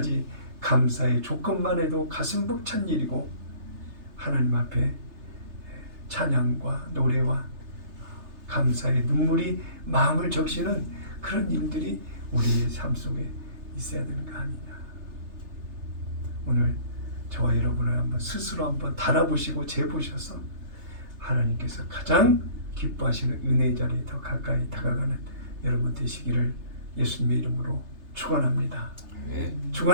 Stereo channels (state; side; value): late; left; 3.3 ms